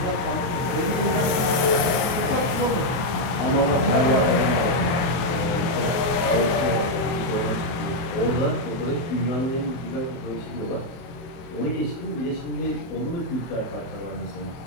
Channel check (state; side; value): late; right; 24 ms